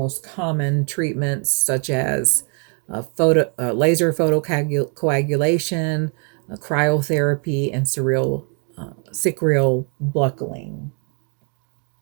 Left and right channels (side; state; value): left; quieter; 39.0 dB